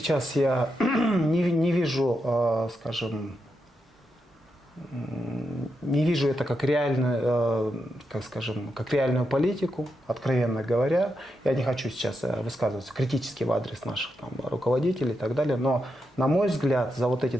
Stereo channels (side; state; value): both; normal; correlation 0.85